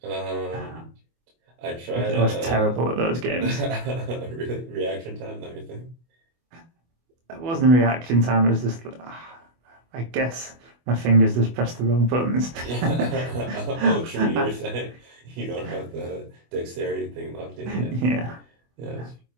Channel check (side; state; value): left; late; 24 ms